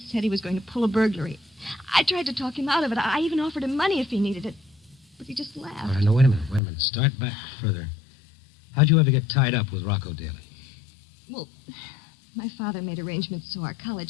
he was going to pull a burglary. I tried to talk him out of it. I even offered him money if he needed it. But he just laughed. All right, now, wait a minute. Start back further. How'd you ever get tied up with Rocco Daly? Well, my father made arrangements so our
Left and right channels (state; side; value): drops out; right; at 6.6 s